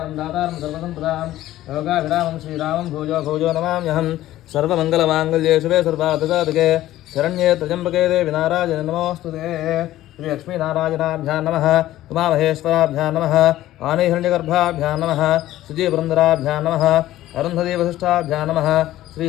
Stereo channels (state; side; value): quieter; right; 14.6 dB